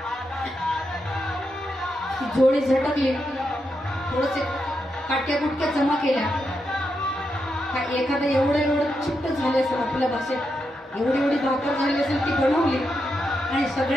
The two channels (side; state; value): both; normal; correlation 0.84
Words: झोळी झटकली, थोडसे काट्या गुटक्या जमा केल्या. एखादं एवढं चिट्ट झाले असेल, आपल्या भाषेत एवढी भाकर झाली असेल, ती बनवली आणि